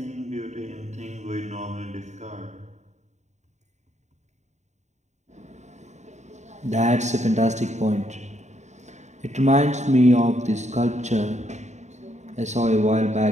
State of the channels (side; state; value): left; late; 0.34 ms